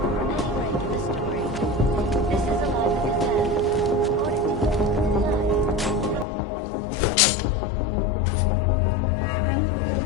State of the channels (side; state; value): right; drops out; at 6.2 s